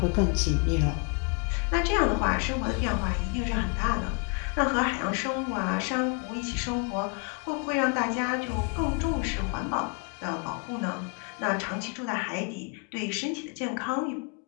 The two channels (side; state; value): right; quieter; 36.8 dB